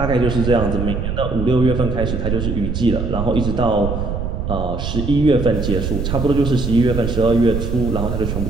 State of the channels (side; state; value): right; noise; rumble, 3 dB below the sound